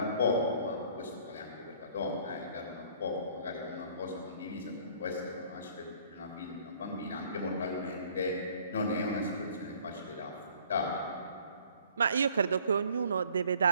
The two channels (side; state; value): both; inverted; correlation -0.57